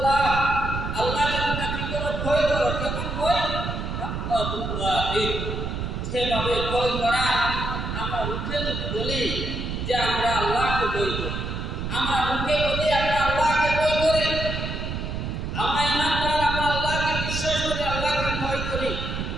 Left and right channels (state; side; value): noise; right; rumble, 4 dB below the sound